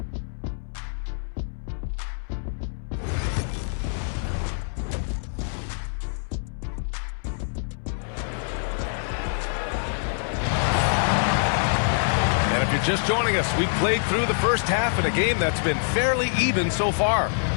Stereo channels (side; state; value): right; silent; 62 dB below the other